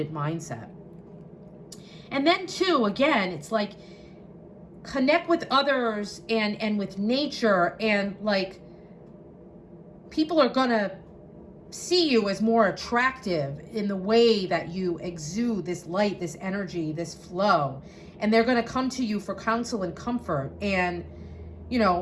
mindset. And then too, again, it's like, connect with others and with nature, and like, people are going to see you as more attractive in the way that you exude this light, this energy, this flow. And they're going to come to you for counsel and comfort. And, you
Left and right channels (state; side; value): identical; both; correlation 1.00